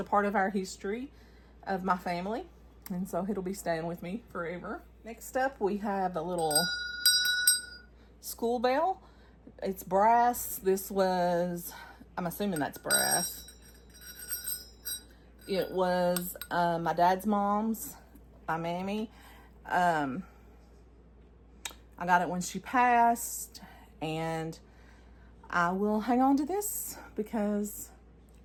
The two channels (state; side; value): identical; both; correlation 1.00